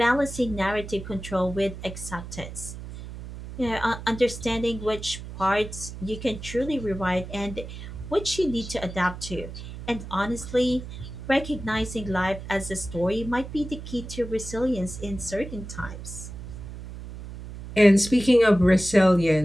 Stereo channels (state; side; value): noise; right; hum, 11 dB below the sound